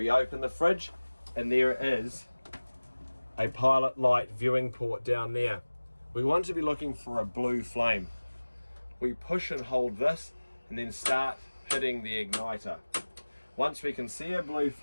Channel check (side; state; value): both; inverted; correlation -1.00